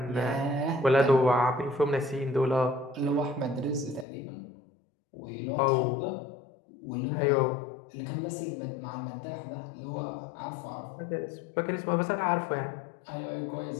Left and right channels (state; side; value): drops out; right; at 4.0 s